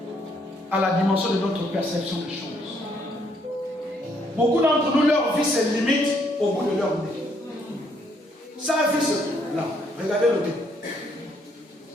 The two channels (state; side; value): normal; both; correlation 0.70